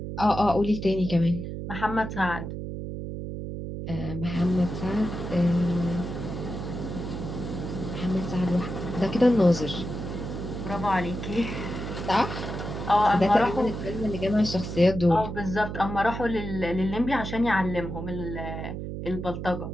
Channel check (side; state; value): right; noise; hum, 6 dB below the sound